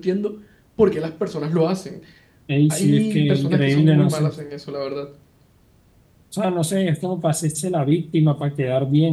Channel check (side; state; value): both; identical; correlation 1.00